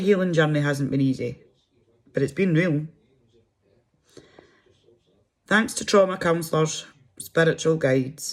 journey hasn't been easy, but it's been real. Thanks to trauma counsellors, spiritual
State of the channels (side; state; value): both; identical; correlation 1.00